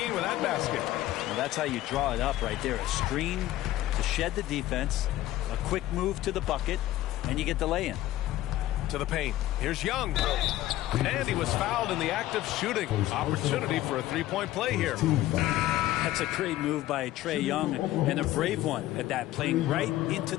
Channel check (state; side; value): quieter; right; 14.9 dB